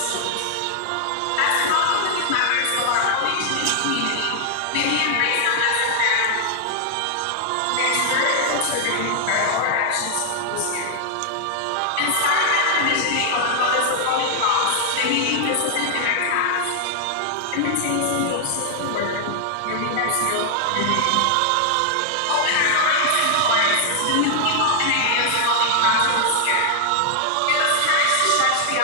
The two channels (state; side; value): different; both; correlation 0.00